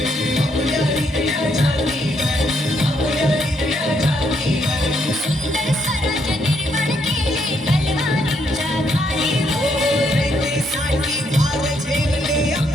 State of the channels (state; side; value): normal; both; correlation 0.74